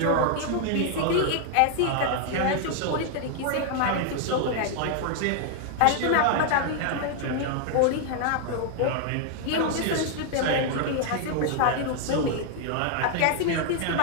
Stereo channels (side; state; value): both; different; correlation 0.00